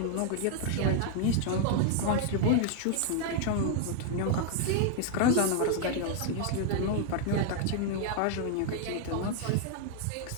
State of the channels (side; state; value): both; different; correlation 0.00